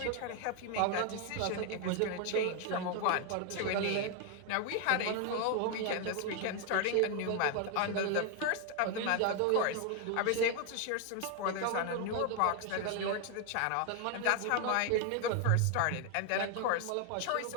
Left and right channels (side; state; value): both; different; correlation 0.01